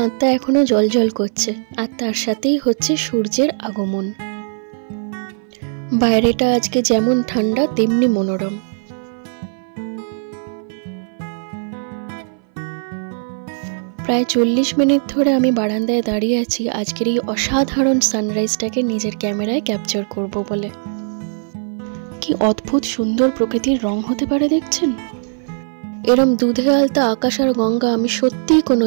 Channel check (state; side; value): silent; left; 60 dB below the other